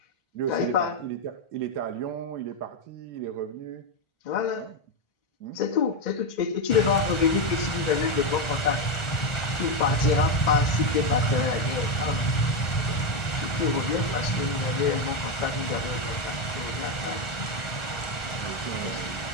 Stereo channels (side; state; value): right; late; 1.4 ms